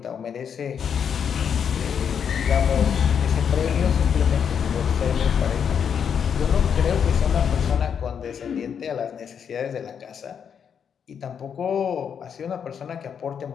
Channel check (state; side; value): quieter; right; 7.5 dB